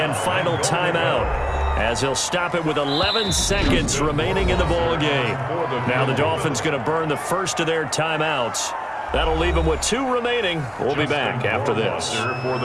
final timeout as they'll stop it with 11 seconds remaining in the ball game. Now the Dolphins going to burn the first of their timeouts. That'll leave them with 2 remaining. We'll be back after this. For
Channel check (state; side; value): identical; both; correlation 1.00